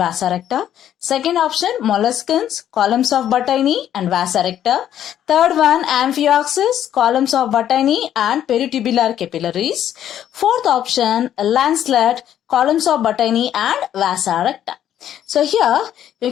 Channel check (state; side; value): quieter; right; 10.7 dB